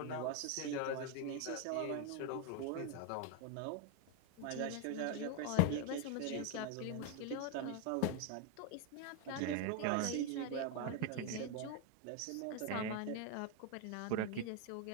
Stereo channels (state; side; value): different; both; correlation 0.01